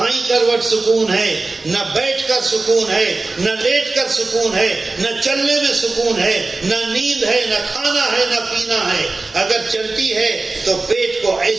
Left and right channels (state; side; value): quieter; left; 3.5 dB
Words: کروٹ سکون ہے، نہ بیٹھ کر سکون ہے، نہ لیٹ کر سکون ہے، نہ چلنے میں سکون ہے، نہ نیند ہے، نہ کھانا ہے، نہ پینا ہے۔ اگر چلتی ہے تو پیٹ کو